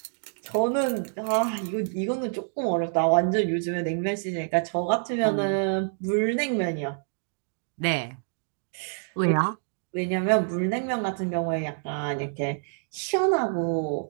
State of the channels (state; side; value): silent; left; digital silence